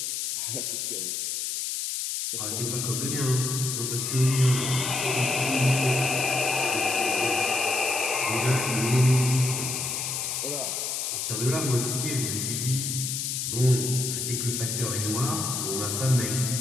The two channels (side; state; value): left; noise; hiss, 2 dB below the sound